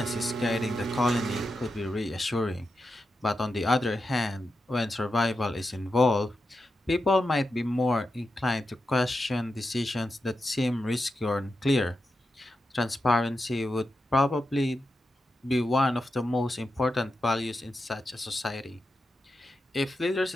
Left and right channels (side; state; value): both; normal; correlation 0.88